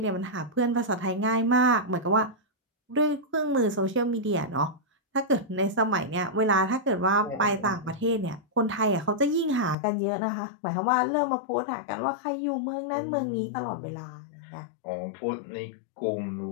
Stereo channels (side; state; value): right; drops out; at 9.8 s